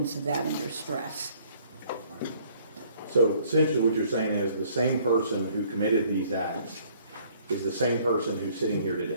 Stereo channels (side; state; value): both; inverted; correlation -0.60